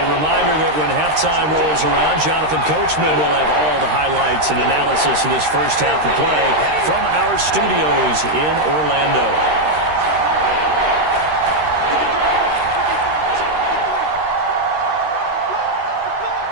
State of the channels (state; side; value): late; left; 13 ms